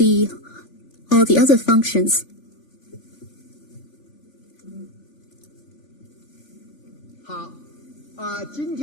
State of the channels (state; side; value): late; right; 3.5 ms